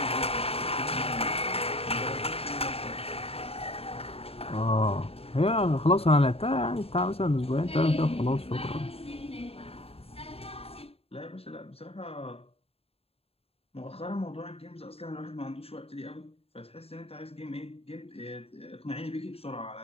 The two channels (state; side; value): late; right; 0.28 ms